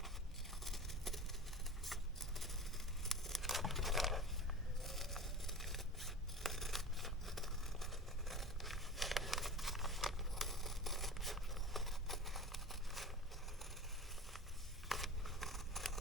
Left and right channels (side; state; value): both; normal; correlation 0.34